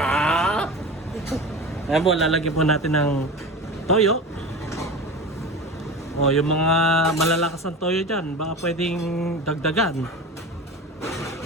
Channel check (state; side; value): normal; both; correlation 0.30